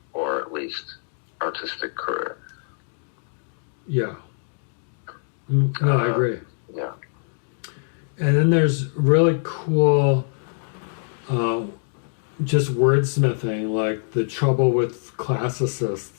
or at least artistic career. Yeah. No, I agree. Yeah. And then there's really cool just wordsmithing, like the trouble with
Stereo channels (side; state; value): right; silent; digital silence